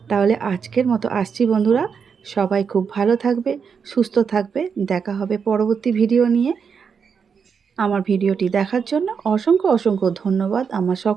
তাহলে আজকের মতো আসছি বন্ধুরা, সবাই খুব ভালো থাকবে, সুস্থ থাকবে। দেখা হবে পরবর্তী ভিডিও নিয়ে। আমার ভিডিওটি দেখার জন্য অসংখ্য অসংখ্য ধন্যবাদ আমার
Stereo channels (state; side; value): quieter; left; 6.3 dB